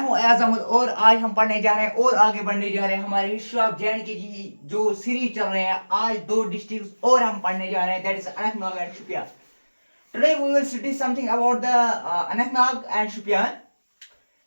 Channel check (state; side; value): inverted; both; correlation -1.00